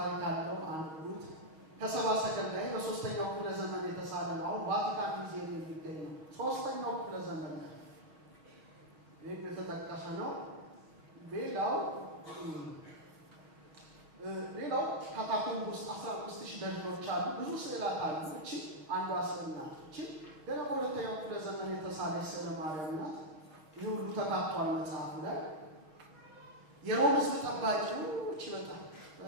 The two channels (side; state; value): left; late; 6.4 ms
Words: አለው። አንዱት ከሰባ ሰገል ላይ በ3ኛው ክፍለ ዘመን የተሳለ ነው። አሁን ቫቲካን ሙዚየም የሚገኝ ነው። 3ኛው ክፍለ ዘመን ላይ ይሄ የተጠቀሰ ነው። ሌላው ካታኮምብ ውስጥ 15000 ደጆች አሉ። ብዙ ስዕላት አሉ። እቺ አንዷ ስዕል ናት። እቺ ገና በሁለተኛው ክፍለ ዘመን የተሳለች ስዕለ ማርያም ናት። ይህ ሁሉ ተካቷል መጽሐፉ ላይ። የሮም ሕዝብ ጠባቂው እቺ